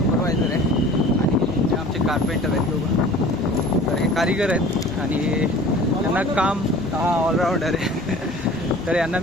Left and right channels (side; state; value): both; normal; correlation 0.44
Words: आहे आणि आमचे कार्पेंटर आहेत दोघं. तर हे कारिगर आहेत आणि यांना काम ऑलराऊंडर आहे. तर यांना